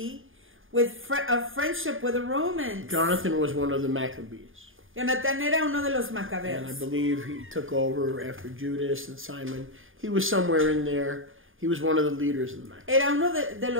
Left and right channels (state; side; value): late; left; 0.59 ms